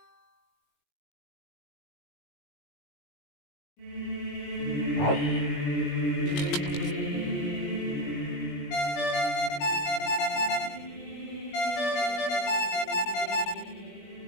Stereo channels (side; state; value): right; late; 19 ms